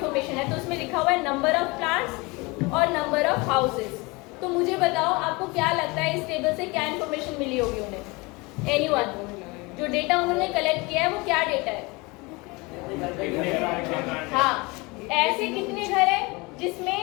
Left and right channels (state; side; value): quieter; right; 25.4 dB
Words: है। तो उसमें लिखा हुआ है नंबर ऑफ प्लांट्स और नंबर ऑफ हाउसेस। तो मुझे बताओ आपको क्या लगता है इस टेबल से क्या इन्फॉर्मेशन मिली होगी उन्हें? एनीवन? जो डेटा उन्होंने कलेक्ट किया है वो क्या डेटा है? हाँ, ऐसे कितने घर है जिसमें